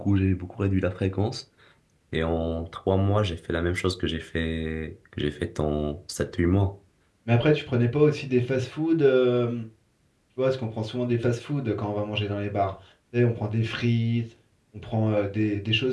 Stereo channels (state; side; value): identical; both; correlation 1.00